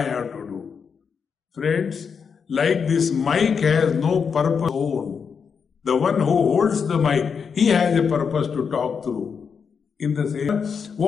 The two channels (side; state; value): right; quieter; 6.3 dB